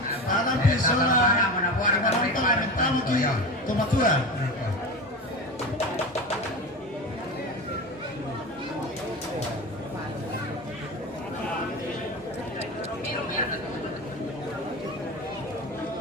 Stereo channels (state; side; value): normal; both; correlation 0.26